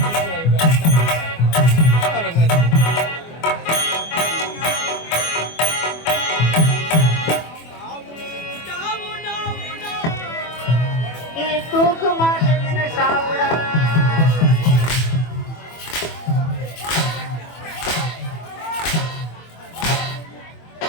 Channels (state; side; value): late; right; 24 ms